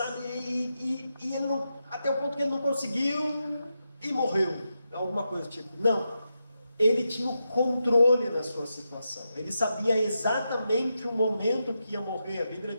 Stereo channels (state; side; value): inverted; both; correlation -0.87